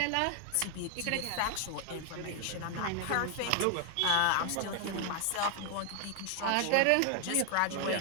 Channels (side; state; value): both; different; correlation 0.00